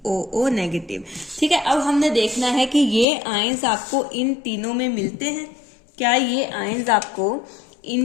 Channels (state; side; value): drops out; right; at 3.1 s